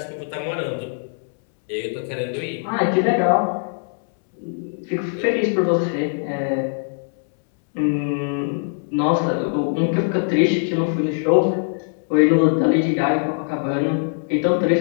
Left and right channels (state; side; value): silent; right; 65 dB below the other